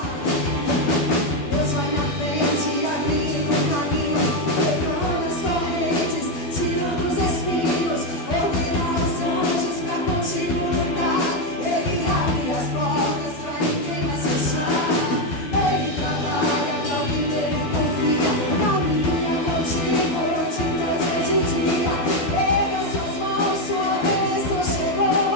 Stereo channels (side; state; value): right; late; 12 ms